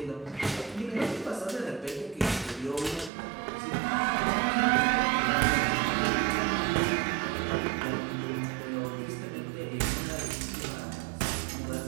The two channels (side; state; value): left; drops out; at 3.1 s